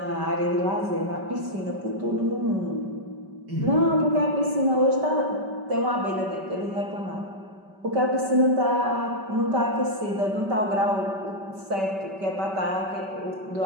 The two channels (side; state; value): left; late; 5.2 ms